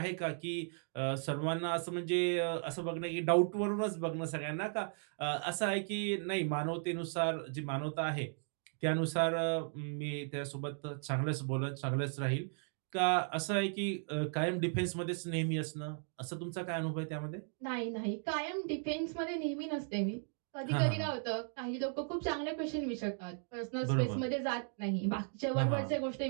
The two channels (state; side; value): silent; left; 54 dB below the other